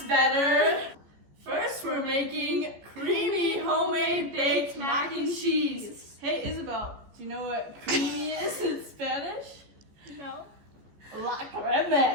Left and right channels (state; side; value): late; left; 14 ms